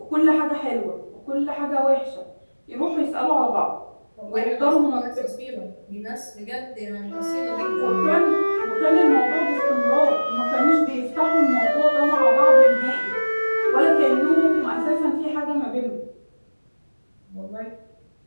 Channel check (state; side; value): inverted; both; correlation -1.00